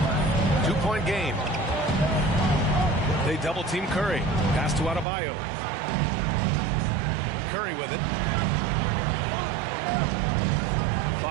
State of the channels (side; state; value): left; drops out; at 5.1 s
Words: 2-point game. They double team Curry. Pass to Adebayo. Curry with it.